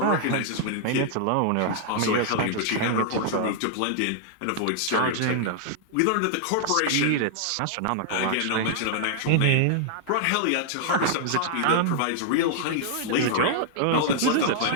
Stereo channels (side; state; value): both; different; correlation -0.01